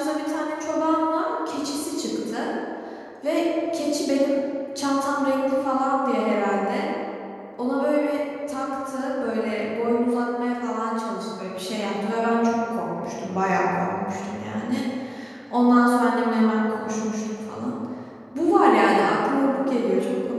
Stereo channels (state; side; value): identical; both; correlation 1.00